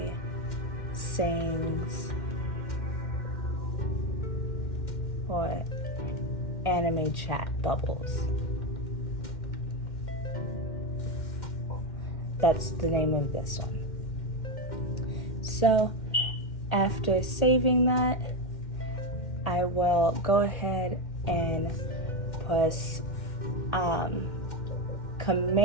Sings or Anime Chat Bubbles. That's the name of this one. So after saving that, I will go ahead and press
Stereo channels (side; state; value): right; late; 1.8 ms